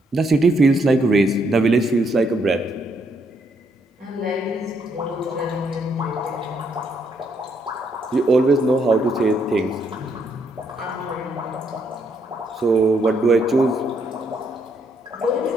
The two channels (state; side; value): normal; both; correlation 0.74